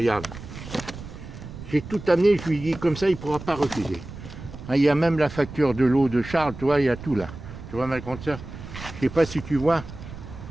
J'ai tout amené, je lui dis comme ça, il ne pourra pas refuser. Hein, il y a même la facture de l'eau de Charles, tu vois, il y a tout là. Tu vois, ma grande sœur, je ne sais pas si tu vois,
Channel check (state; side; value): noise; right; rumble, 13 dB below the sound